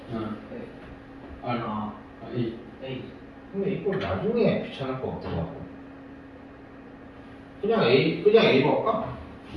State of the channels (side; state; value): both; identical; correlation 1.00